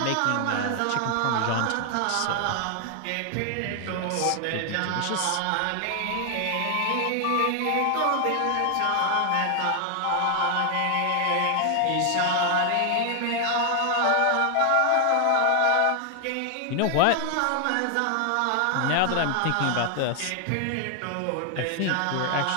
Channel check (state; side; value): different; both; correlation 0.00